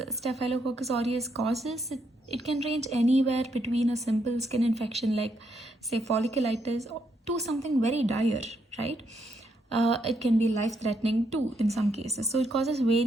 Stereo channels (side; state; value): both; normal; correlation 0.77